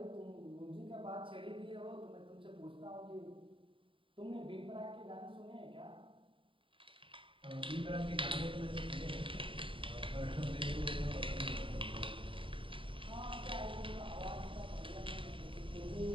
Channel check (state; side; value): late; left; 0.25 ms